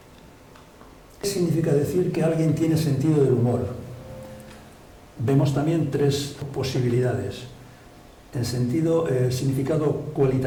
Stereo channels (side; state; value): both; identical; correlation 1.00